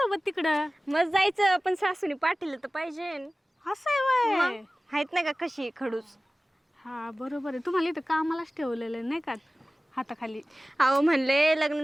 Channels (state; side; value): normal; both; correlation 0.97